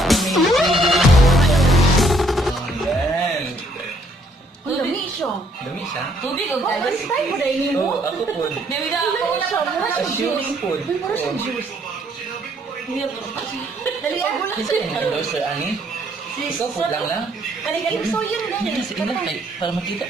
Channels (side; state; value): both; normal; correlation 0.66